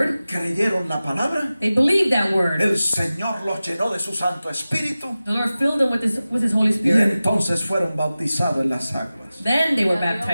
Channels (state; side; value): inverted; both; correlation -0.96